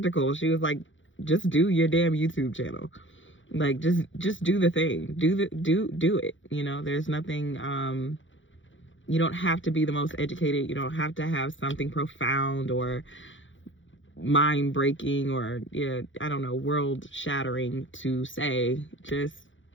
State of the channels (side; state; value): right; late; 0.56 ms